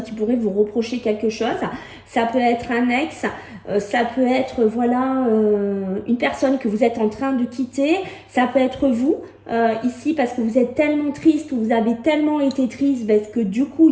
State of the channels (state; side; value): identical; both; correlation 1.00